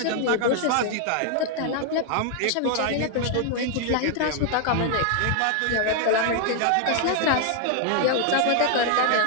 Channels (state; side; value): different; both; correlation 0.00